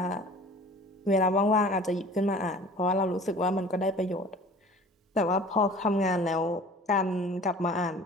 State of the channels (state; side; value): normal; both; correlation 0.45